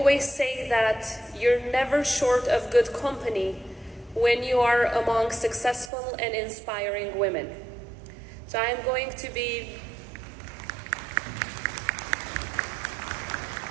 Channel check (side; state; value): left; drops out; at 5.9 s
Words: say that you're never short of good company when you are among successful and inspiring women. So I'm going to be